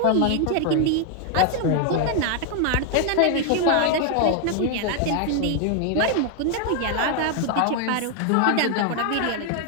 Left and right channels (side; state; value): both; different; correlation 0.01